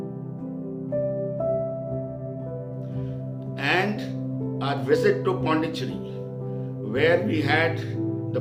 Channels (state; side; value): identical; both; correlation 1.00